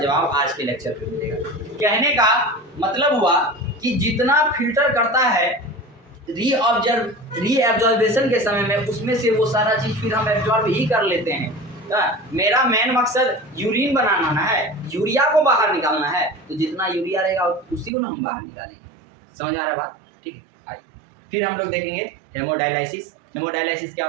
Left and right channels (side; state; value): left; drops out; at 17.9 s